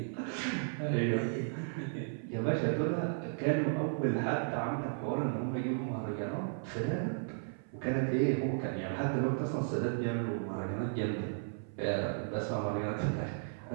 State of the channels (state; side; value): silent; left; 55 dB below the other